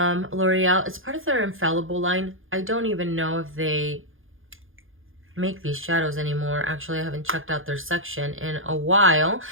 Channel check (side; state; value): left; late; 0.59 ms